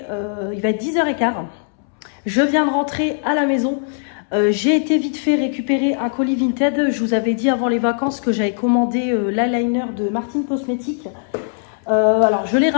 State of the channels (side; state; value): right; silent; 66 dB below the other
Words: être 10h15. Je viens de rentrer à la maison. J'ai été vite fait récupérer un colis Vinted. Je vous avais dit avant les vacances que j'avais commandé l'eyeliner de Martine Cosmetics. Alors, je l'ai